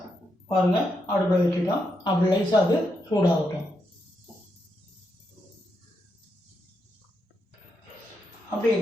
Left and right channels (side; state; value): both; normal; correlation 0.82